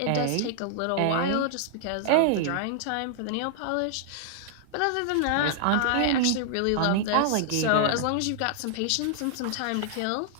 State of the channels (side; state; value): both; different; correlation -0.01